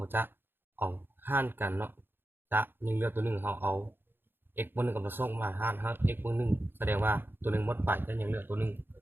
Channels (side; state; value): left; late; 0.10 ms